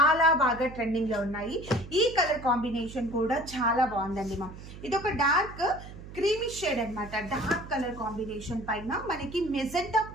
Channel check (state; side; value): noise; right; hum, 14 dB below the sound